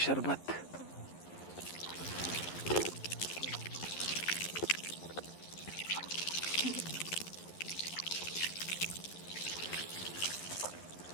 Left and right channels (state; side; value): late; right; 11 ms